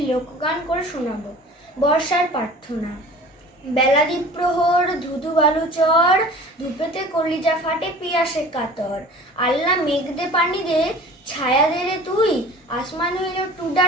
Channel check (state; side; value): normal; both; correlation 0.43